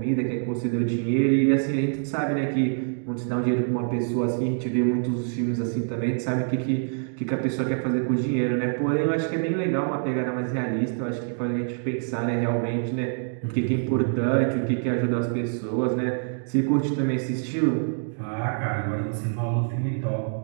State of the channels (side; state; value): left; silent; 61 dB below the other